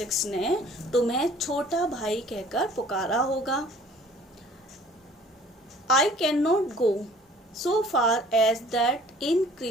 ने तुम्हें छोटा भाई कहकर पुकारा होगा। I can not go so far as that in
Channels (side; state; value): both; normal; correlation 0.53